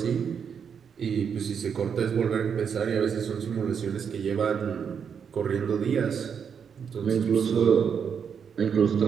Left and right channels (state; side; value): quieter; left; 7.1 dB